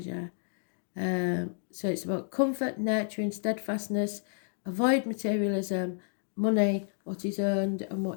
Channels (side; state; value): right; silent; digital silence